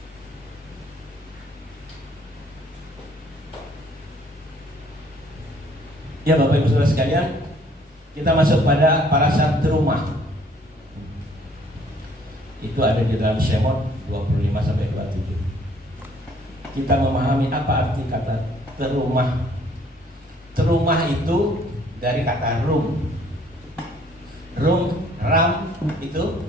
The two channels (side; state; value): both; normal; correlation 0.60